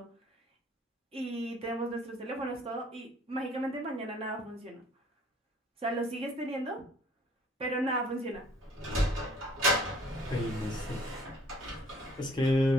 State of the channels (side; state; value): both; normal; correlation 0.57